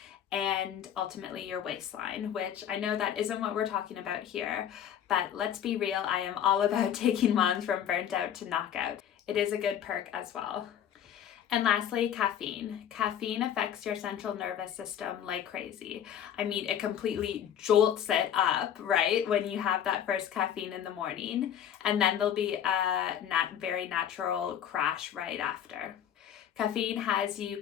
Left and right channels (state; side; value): quieter; right; 9.7 dB